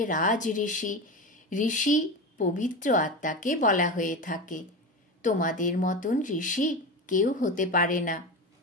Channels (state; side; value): normal; both; correlation 0.23